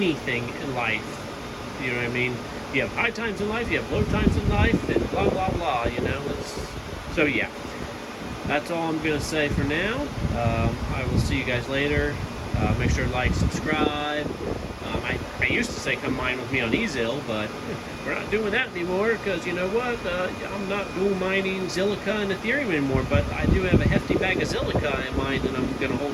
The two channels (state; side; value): identical; both; correlation 1.00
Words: in life. You know what I mean? You have high times in life, you have low times in life, and blah blah blah. You know, so yeah. That's all I'm going to say for now. I will see you guys later. Make sure to like, subscribe. I used to say come mine with me on Ezil, but we're not doing that anymore because, you know what? I'm not dual mining Zilliqa and Ethereum anymore, but I do have a hefty bag of Zilliqa in mind that I'm going to